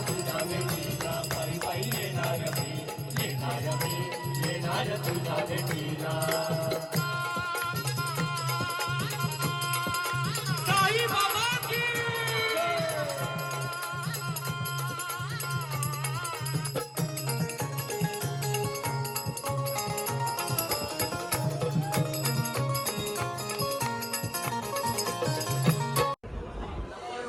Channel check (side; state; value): both; identical; correlation 1.00